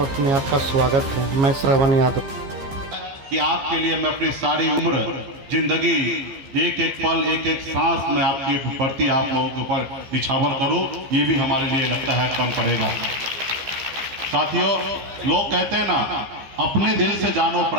में आपका स्वागत है। मैं श्रवण यादव। कि आपके लिए मैं अपनी सारी उम्र जिंदगी एक एक पल एक एक सांस में आपके प्रति आप लोगों के ऊपर निछावर करूं, ये भी हमारे लिए लगता है कम पड़ेगा। साथियों, लोग कहते हैं ना, अपने दिल से जानो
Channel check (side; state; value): left; late; 15 ms